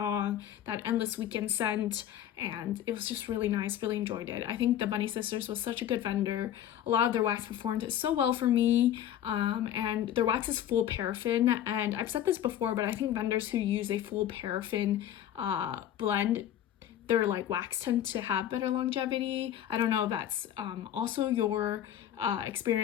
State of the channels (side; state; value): right; quieter; 11.0 dB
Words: that Endless Weekend scent. and it was just really nice, really enjoyed it. I think the Bunny Sisters was such a good vendor. A lot of their wax performed so well for me, and their wax is full paraffin, and I've said this before, but I think vendors who use a full paraffin blend, their like wax tend to have better longevity. I don't know if that's also your